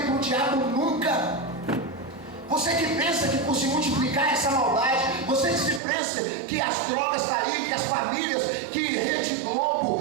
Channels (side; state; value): left; drops out; at 5.8 s